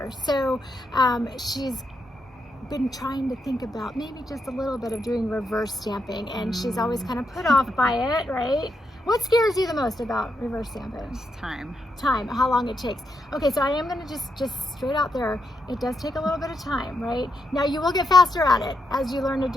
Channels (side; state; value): both; normal; correlation 0.82